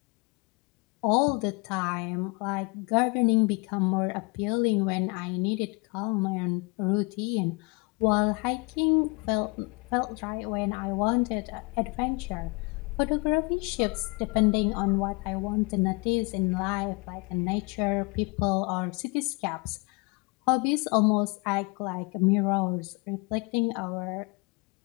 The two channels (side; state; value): right; quieter; 28.9 dB